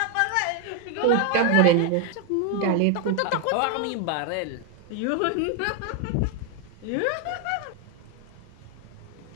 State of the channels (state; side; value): different; both; correlation 0.01